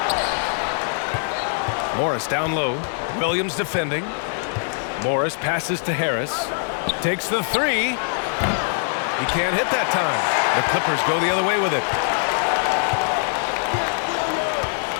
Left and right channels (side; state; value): right; silent; digital silence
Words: Morris down low. Williams defending. Morris passes to Harris. Takes the 3. He can't hit that time. The Clippers go the other way with it.